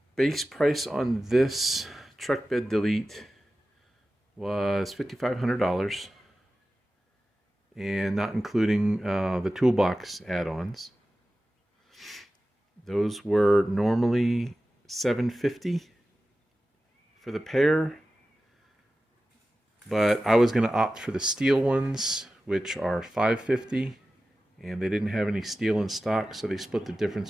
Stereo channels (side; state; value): both; normal; correlation 0.95